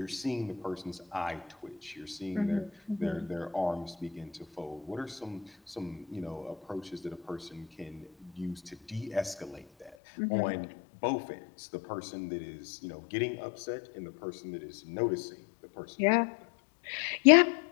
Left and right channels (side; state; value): right; drops out; at 9.9 s